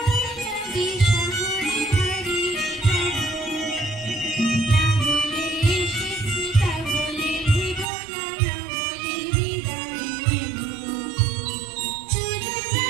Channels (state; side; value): drops out; left; at 7.9 s